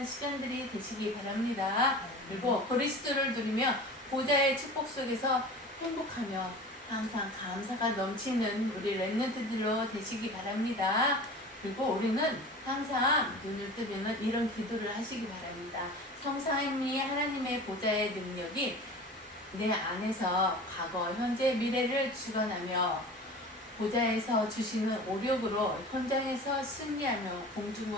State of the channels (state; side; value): normal; both; correlation 0.37